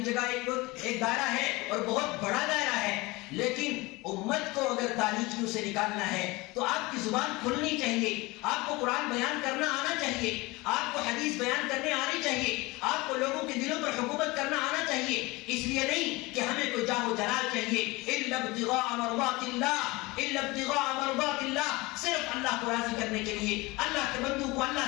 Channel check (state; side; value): quieter; right; 22.7 dB